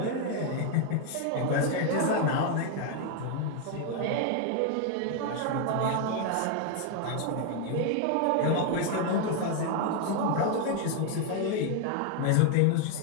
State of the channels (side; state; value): both; different; correlation 0.01